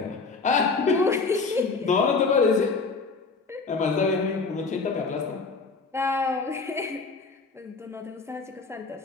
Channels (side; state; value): right; quieter; 4.3 dB